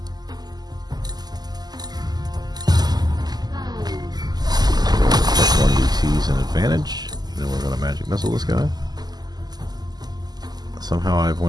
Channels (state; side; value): late; left; 0.20 ms